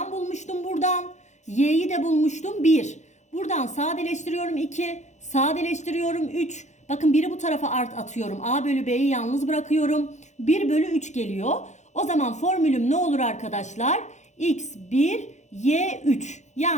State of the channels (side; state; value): right; late; 0.34 ms